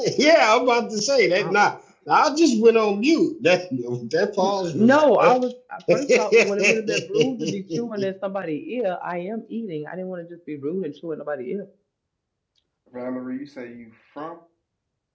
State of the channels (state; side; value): identical; both; correlation 1.00